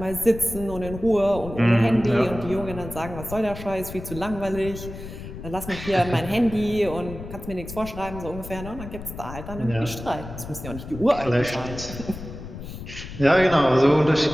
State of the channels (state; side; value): noise; left; rumble, 11 dB below the sound